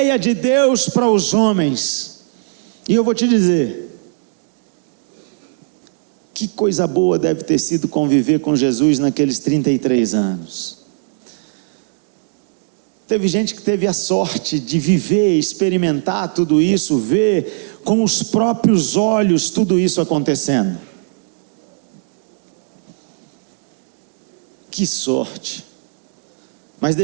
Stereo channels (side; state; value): left; silent; digital silence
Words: de Deus para os homens. E eu vou te dizer, que coisa boa deve ter sido conviver com Jesus naqueles 33 anos. Teve gente que teve a sorte de viver, experimentar tudo isso, ver com os próprios olhos tudo isso acontecendo. Que sorte! Mas